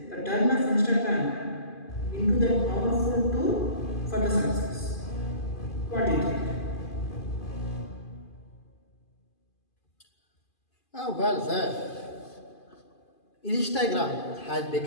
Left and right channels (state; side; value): late; right; 2.5 ms